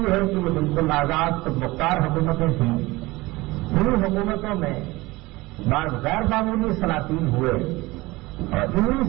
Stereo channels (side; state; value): left; quieter; 21.0 dB